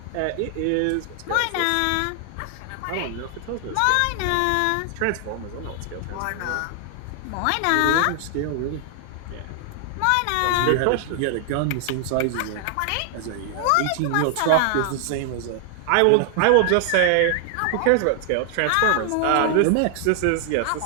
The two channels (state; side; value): different; both; correlation 0.00